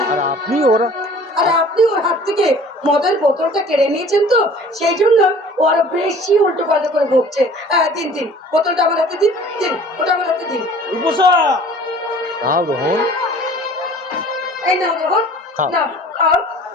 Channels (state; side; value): normal; both; correlation 0.48